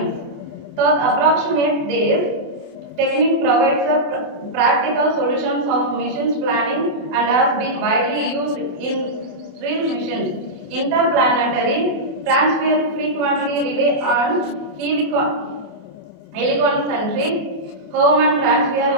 Thus, approximate this technique provides a practical solutions of missions planning and has been widely used in real missions. Interplanetary transfer frequently rely on heliconcentric Hohmann transfer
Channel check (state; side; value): late; left; 28 ms